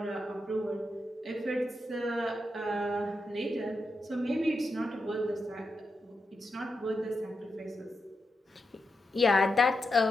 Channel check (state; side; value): normal; both; correlation 0.87